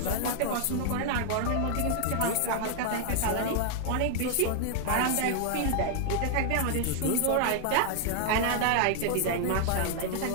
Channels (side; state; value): both; different; correlation 0.00